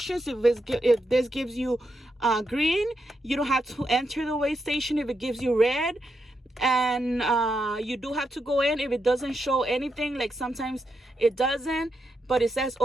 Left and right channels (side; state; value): both; normal; correlation 0.84